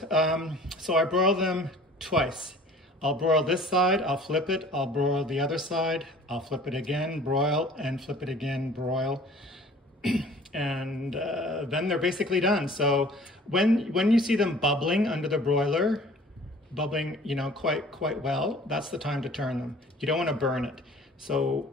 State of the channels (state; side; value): normal; both; correlation 0.49